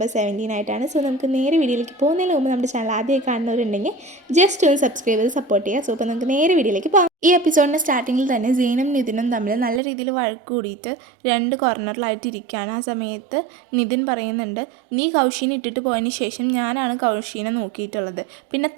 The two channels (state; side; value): drops out; left; at 9.8 s